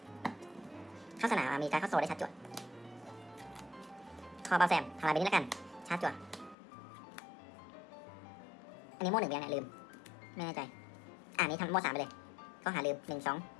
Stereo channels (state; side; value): drops out; right; at 6.6 s